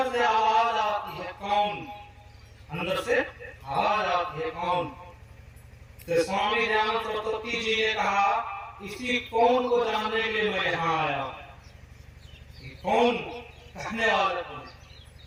से आवाज आती है, कौन? अंदर से आवाज आती है, कौन? तो स्वामी दयानंद सरस्वती जी ने कहा इसी कौन को जानने के लिए मैं यहाँ आया हूँ। कौन कहने वाला कौन?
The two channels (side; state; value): both; identical; correlation 1.00